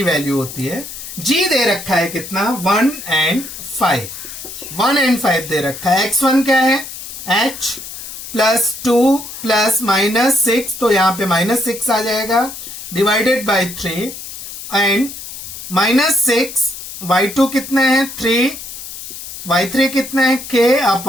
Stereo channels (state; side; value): noise; left; hiss, 11 dB below the sound